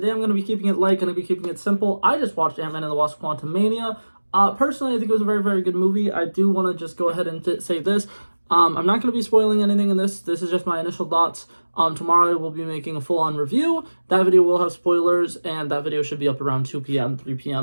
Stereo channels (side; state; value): both; inverted; correlation -1.00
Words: I'm going to be keeping it light, going to be keeping it simple. I just watched Antman and the Wasp: Quantumania. Personally, I think it was a very, very good movie. I do want to just go ahead and say this. I'm not going to be spoiling anything in this. This is just my initial thoughts. Tomorrow we'll be making a full-on review. That video will have spoilers, and that video should be up around 2 p.m., 3